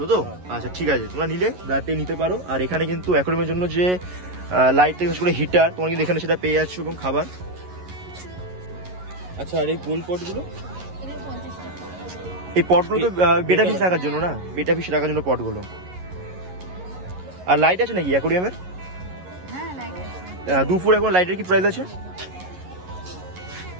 তো? আচ্ছা, ঠিক আছে, তোমরা নিলে রাতে নিতে পারো। আর এখানে কিন্তু অ্যাকোয়ারিয়ামের জন্য যে লাইট থেকে করে হিটার তোমরা কিন্তু এখানে সেটা পেয়ে যাচ্ছ, এবং খাবার। আচ্ছা, আর এই গোল পটগুলো এই পটগুলো তো বেটা ফিশ রাখার জন্য না? বেটা ফিশ রাখার জন্য পটগুলো। আর লাইট আছে নাকি অ্যাকোয়ারিয়ামের? হ্যাঁ, লাইট আছে। দুপুর এখন লাইটের কি প্রাইস আছে?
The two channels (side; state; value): left; late; 11 ms